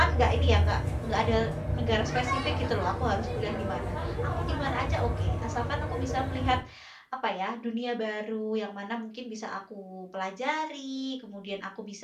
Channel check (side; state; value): both; identical; correlation 1.00